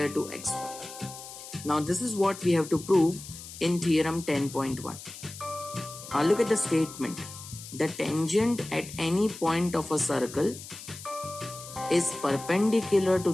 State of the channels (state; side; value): noise; left; hiss, 14 dB below the sound